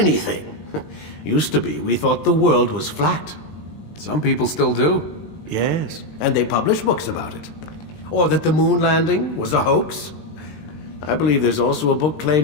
Used to be, we thought the world was flat. Some people still do. Yes, and they publish books about it. Or that the moon landing was a hoax. I believe there's also a book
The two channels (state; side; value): late; right; 20 ms